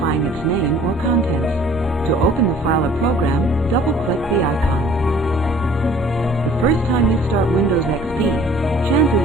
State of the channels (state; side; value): noise; right; rumble, 17 dB below the sound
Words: its name or contents. To open the file or program, double-click the icon. The first time you start Windows XP,